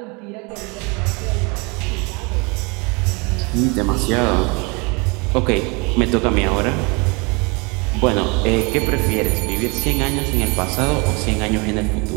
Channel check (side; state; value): left; quieter; 29.2 dB